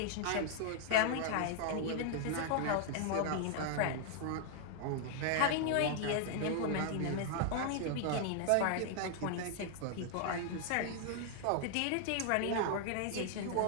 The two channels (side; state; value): both; different; correlation 0.00